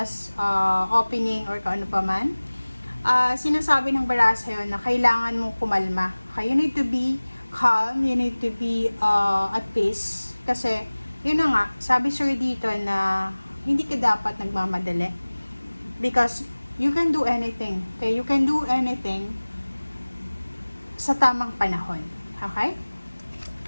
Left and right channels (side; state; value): both; inverted; correlation -1.00